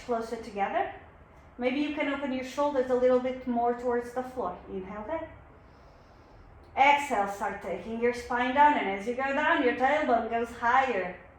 closer together. Maybe you can open your shoulders a little bit more towards the floor. Inhale there. Exhale, start taking your spine down, and as you go down, your tailbone goes higher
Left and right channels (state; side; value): identical; both; correlation 1.00